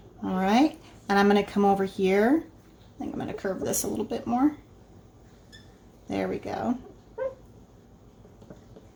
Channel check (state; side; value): identical; both; correlation 1.00